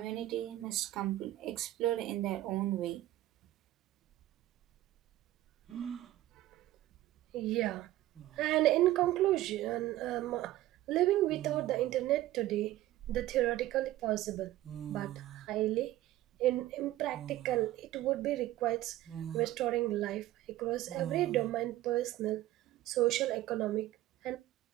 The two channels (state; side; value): quieter; left; 15.3 dB